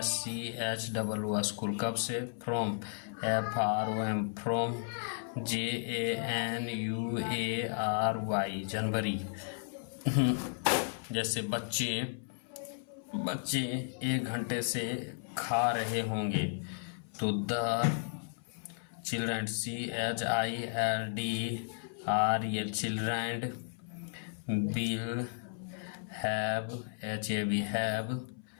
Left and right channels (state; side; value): silent; right; 55 dB below the other